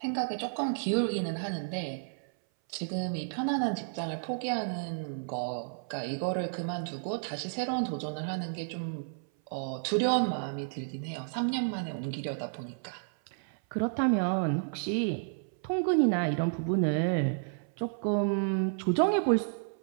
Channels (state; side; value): silent; left; 57 dB below the other